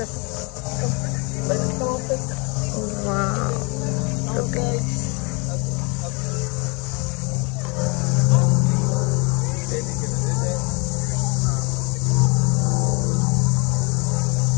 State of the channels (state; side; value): quieter; right; 29.9 dB